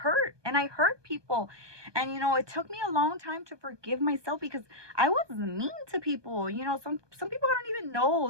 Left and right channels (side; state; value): left; late; 1.2 ms